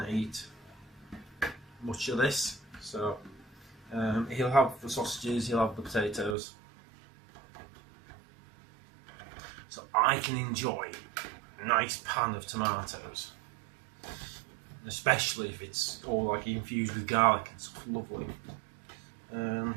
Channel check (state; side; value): drops out; left; at 6.4 s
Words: to eat much of this. So he'll have the sausages, he'll have the potatoes, so I can enjoy a nice pan of tomatoes, especially if it's all like infused with garlic and stuff. Lovely.